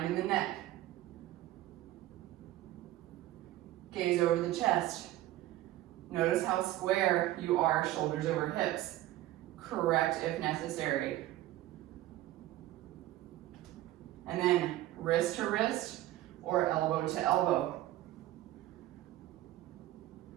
in the neck. Gaze over the chest. Notice how square you are, shoulders over hips. Correct if necessary. And then wrist to wrist or elbow to elbow.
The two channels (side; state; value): left; quieter; 15.1 dB